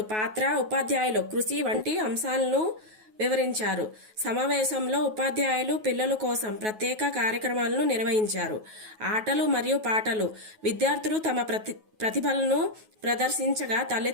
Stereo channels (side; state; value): left; late; 9.3 ms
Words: పాత్ర, ఉపాధ్యాయులు కృషి వంటి అంశాలను వివరించారు. సమావేశంలో ఉపాధ్యాయులు పిల్లల కోసం ప్రత్యేక కార్యక్రమాలను నిర్వహించారు. ఆటలు మరియు పాటలు, విద్యార్థులు తమ ప్రతిభలను ప్రదర్శించగా